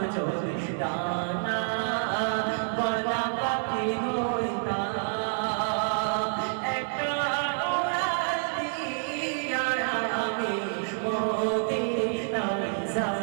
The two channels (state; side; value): silent; left; 59 dB below the other